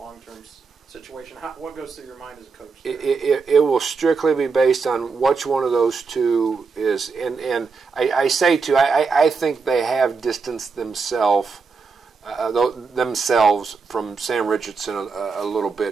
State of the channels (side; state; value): left; quieter; 4.8 dB